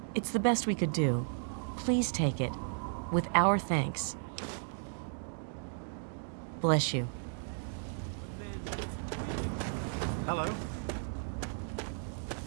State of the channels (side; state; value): left; silent; digital silence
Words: It's the best we could do. Please take it, with our thanks. Bless you. Hello.